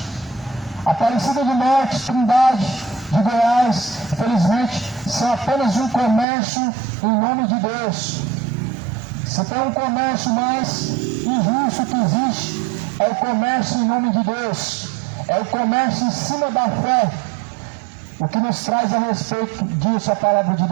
Aparecida de Norte, Trindade, de Goiás, infelizmente, são apenas um comércio em nome de Deus. Se tem um comércio mais injusto que existe, é o comércio em nome de Deus. É o comércio em cima da fé. O que nos traz a respeito disso a palavra de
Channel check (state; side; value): drops out; left; at 6.2 s